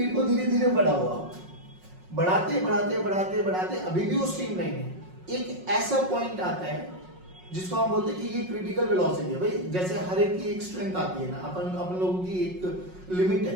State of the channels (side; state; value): left; late; 5.5 ms